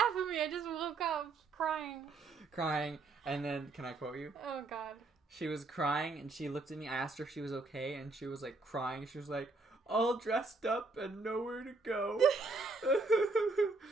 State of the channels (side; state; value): left; quieter; 3.5 dB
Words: at me. I just woke up crying. Crying. And then, can I quote you? Oh, God. She was crying, and she looked at me. I asked her if she was okay, and she was, like, crying. She was like, all dressed up and nowhere to go.